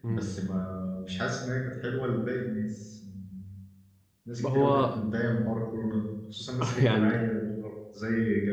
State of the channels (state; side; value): identical; both; correlation 1.00